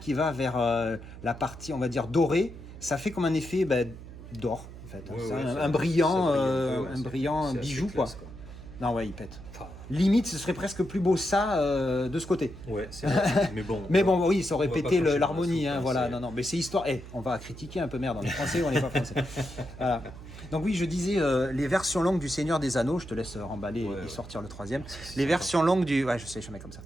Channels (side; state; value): right; noise; hum, 14 dB below the sound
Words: va vers la partie, on va dire, dorée, ça fait comme un effet d'or, en fait. Ouais, C'est ouais, un ça brillant, brille un peu, ouais, un c'est- brillant c'est assez bijou, classe, quoi. Non, ouais, il pète. Enfin, Limite, ce serait presque plus beau ça de ce côté. ouais, c'est vrai. Mais bon. Mais bon, oui, ça aurait on va pété pas cracher l'harmonie, dans la hein, soupe, voilà. c'est- Non, non, mais c'est histoire. On va critiquer un peu, merde, on est français ou on n'est pas français. Voilà. Donc oui, je disais les versions longues du Seigneur des Anneaux. Je te laisse remballer Ouais, et ouais. sortir le troisième. C'est Les sympa. versions longues du, ouais, je sais, je mets comme